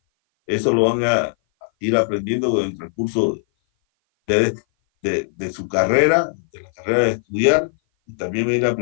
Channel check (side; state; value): right; silent; 58 dB below the other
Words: Eso lo van a ir aprendiendo en el recurso de su carrera, de la carrera de estudiar, y también van a ir